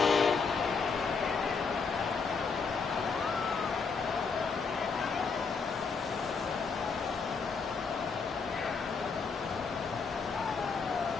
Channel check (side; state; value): right; quieter; 5.1 dB